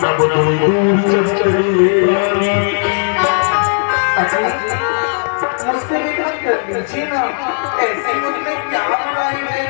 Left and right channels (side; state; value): right; silent; 64 dB below the other